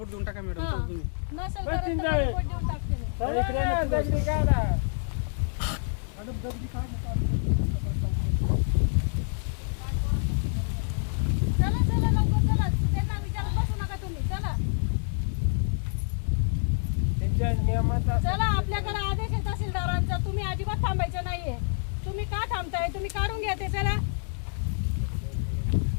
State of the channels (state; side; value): silent; right; 59 dB below the other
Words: देऊन टाका मॅडम. तुम्ही नसेल तर रिपोर्ट देऊन टाकते मी. चला चला लवकर चला, त्यांना विचारत बसू नका तुम्ही. चला चला, आपल्याकडे आदेश आहे तहसीलदारांचा, तुम्ही अजिबात थांबायचं नाहीये. तुम्ही का थांबताय? तुम्ही काढून घ्या ते. चला,